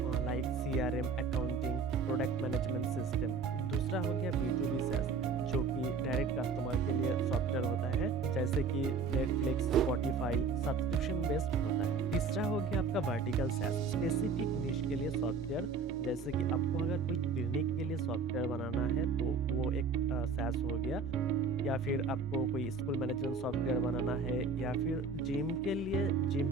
like CRM, accounting, product management system. दूसरा हो गया B2B सैस, जो कि डायरेक्ट कस्टमर के लिए सॉफ्टवेयर होता है, जैसे कि नेटफ्लिक्स, स्पॉटिफाई, सब्सक्रिप्शन बेस्ड होता है। तीसरा हो गया आपका वर्टिकल सैस, स्पेसिफिक निश के लिए सॉफ्टवेयर, जैसे कि आपको अगर कोई क्लिनिक के लिए सॉफ्टवेयर बनाना है तो वो एक सैस हो गया, या फिर आपको कोई स्कूल मैनेजमेंट सॉफ्टवेयर बनाना है, या फिर जिम के लिए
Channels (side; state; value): left; quieter; 4.6 dB